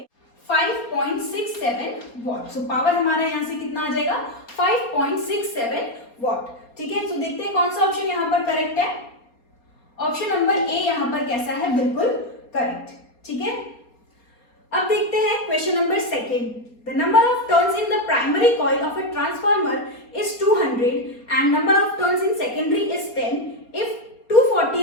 5.67 वॉट। सो पावर हमारा यहाँ से कितना आ जाएगा 5.67 वॉट, ठीक है। तो देखते हैं कौन सा ऑप्शन यहाँ पर करेक्ट है। ऑप्शन नंबर ए यहाँ पर कैसा है, बिल्कुल करेक्ट, ठीक है। अब देखते हैं question number second. The number of turns in the primary coil of a transformer is 200 and number of turns in secondary is 10 if 240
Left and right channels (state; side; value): late; right; 4.3 ms